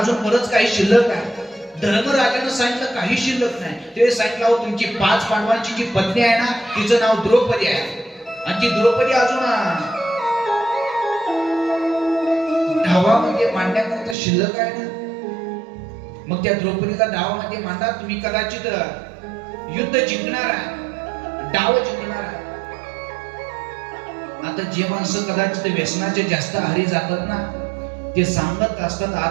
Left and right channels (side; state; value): left; drops out; at 14.2 s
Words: बरंच काही शिल्लक आहे. धर्मराजानं सांगितलं काही शिल्लक नाही. ते सांगितलं तुमची 5 पांडवांची जी पत्नी आहे ना तिचं नाव द्रौपदी आहे, आणि ती द्रौपदी अजून धावामध्ये मांडण्याकरता शिल्लक आहे ना, मग त्या द्रौपदीला डावामध्ये मांडा, तुम्ही कदाचित युद्ध जिंकणार आहे, डाव जिंकणार आहे. आता जे माणसं कदाचित व्यसनाचे जास्त आहारी जातात ना ते सांगत असतात